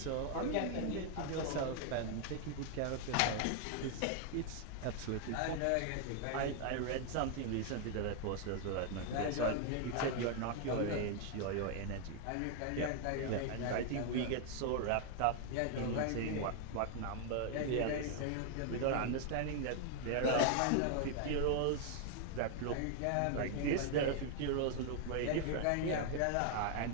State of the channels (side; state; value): both; different; correlation 0.00